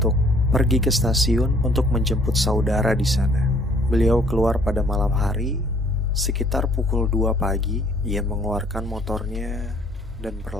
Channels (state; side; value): normal; both; correlation 0.59